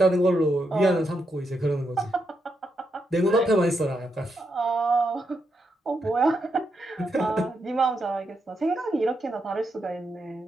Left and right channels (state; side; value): normal; both; correlation 0.82